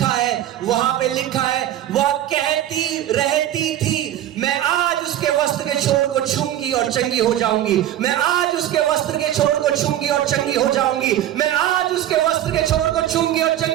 है वहां पे लिखा है, वह कहती रहती थी, मैं आज उसके वस्त्र के छोर को छूंगी और चंगी हो जाऊंगी, मैं आज उसके वस्त्र के छोर को छूंगी और चंगी हो जाऊंगी, मैं आज उसके वस्त्र के छोर को छूंगी और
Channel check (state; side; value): quieter; left; 12.3 dB